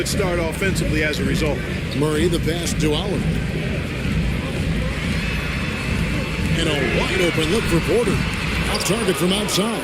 start offensively as a result. Murray the pass to Oliver. And a wide open look for Porter. Off target from outside.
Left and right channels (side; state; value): both; identical; correlation 1.00